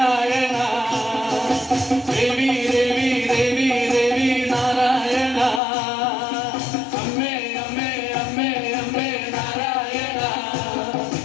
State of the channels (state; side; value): drops out; right; at 5.6 s